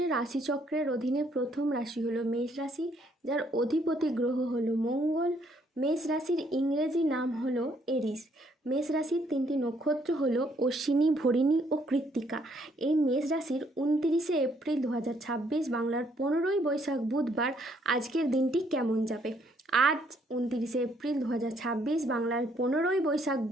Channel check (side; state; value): both; normal; correlation 0.68